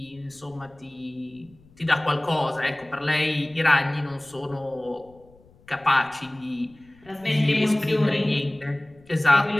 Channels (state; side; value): noise; left; rumble, 28 dB below the sound